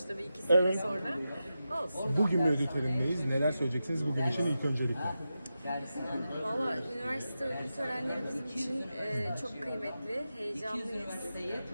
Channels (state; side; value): inverted; both; correlation -0.91